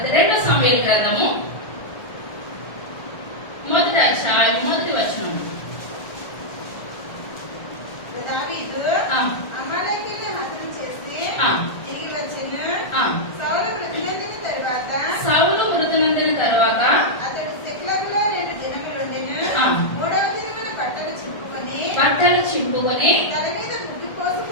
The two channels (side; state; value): right; late; 1.4 ms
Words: 2వ సమూయేలు గ్రంథము 1వ అధ్యాయం 1వ వచనం. దావీదు అమాలేకీయులను హతం చేసి తిరిగి వచ్చెను. సౌలు మృతి నొందిన తరువాత అతడు సిక్లగులో 2 దినములుండెను. 3వ దినమున బట్టలు చింపుకొని తల మీద బుడ్డి